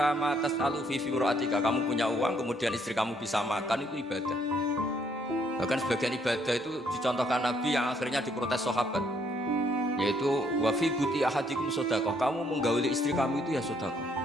ma tas'alu fi firatika, kamu punya uang kemudian istri kamu bisa makan, itu ibadah. Bahkan sebagian ibadah itu dicontohkan Nabi yang akhirnya diprotes sahabat, yaitu wa fi buti ahadikum sedekah, kamu menggauli istri kamu itu ya sedekah.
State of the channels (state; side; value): normal; both; correlation 0.69